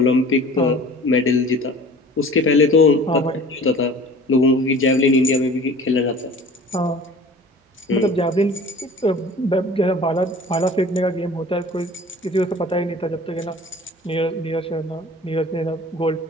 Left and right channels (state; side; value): normal; both; correlation 0.44